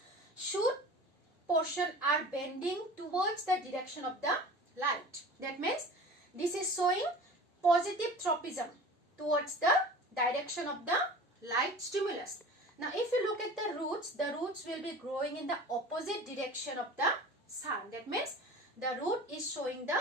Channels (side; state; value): both; normal; correlation 0.39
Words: shoot portion are bending towards the direction of the light. That means this is showing positive tropism towards the direction of the light stimulus. Now if you look at the roots will be growing in the opposite direction of the sun. That means the root is showing the